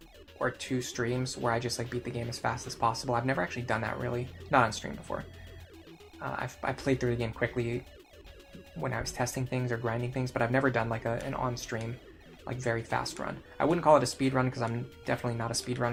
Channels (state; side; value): identical; both; correlation 1.00